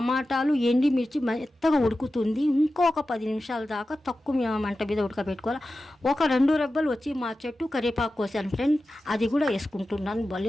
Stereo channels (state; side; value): normal; both; correlation 0.93